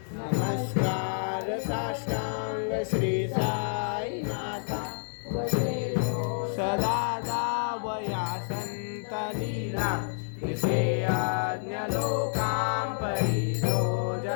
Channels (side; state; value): right; silent; digital silence